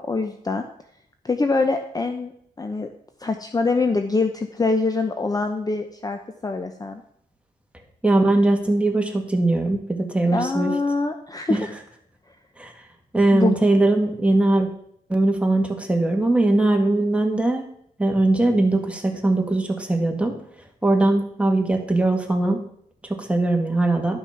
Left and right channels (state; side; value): normal; both; correlation 0.89